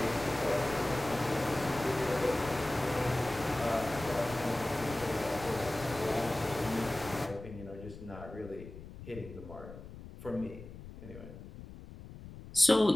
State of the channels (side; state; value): left; noise; rumble, 14 dB below the sound